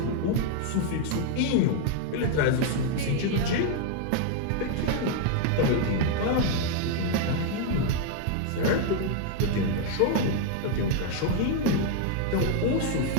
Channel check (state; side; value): different; both; correlation 0.00